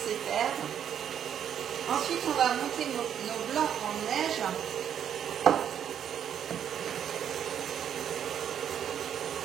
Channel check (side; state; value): left; quieter; 9.1 dB